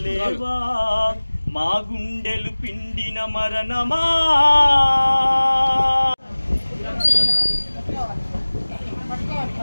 మా గుండెలు పిండిన మరణమా.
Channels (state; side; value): inverted; both; correlation -1.00